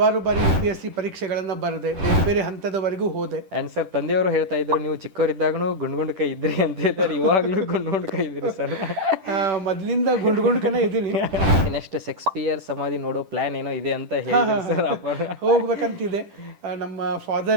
ಬಾರಿ UPSC ಪರೀಕ್ಷೆಗಳನ್ನು ಬರೆದೆ, ಬೇರೆ ಬೇರೆ ಹಂತದವರೆಗೂ ಹೋದೆ. ಆ್ಯಂಡ್ ಸರ್ ತಂದೆಯವರು ಹೇಳ್ತಾ ಇದ್ರು ನೀವು ಚಿಕ್ಕವರಿದ್ದಾಗೂ ಗುಂಡ್ ಕೈ ಇದ್ರಿ ಅಂತ ಹೇಳ್ತಾರೆ, ಇವಾಗಲೂ ಗುಂಡ್ ಕೈ ಇದ್ರಿ ಸರ್. ಮೊದಲಿಂದ ಗುಂಡ್ಕನೇ ಇದ್ದೀನಿ. ನೆಕ್ಸ್ಟ್ ಶೇಕ್ಸ್ಪಿಯರ್ ಸಮಾಧಿ ನೋಡೋ ಪ್ಲಾನ್ ಏನೋ ಇದೆ ಅಂತ ಹೇಳಿದ್ರು ಸರ್. ಹೋಗ್ಬೇಕಂತಿದೆ. ನಮ್ಮ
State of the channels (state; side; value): late; left; 10 ms